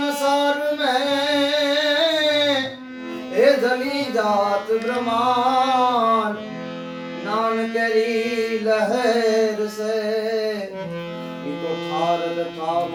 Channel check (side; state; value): both; identical; correlation 1.00